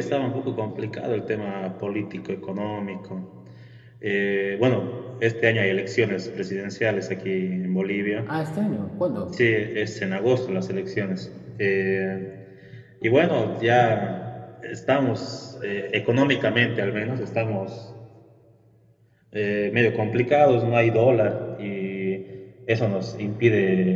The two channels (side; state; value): both; identical; correlation 1.00